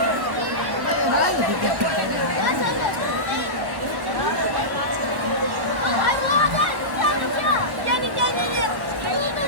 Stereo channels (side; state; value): left; late; 1.1 ms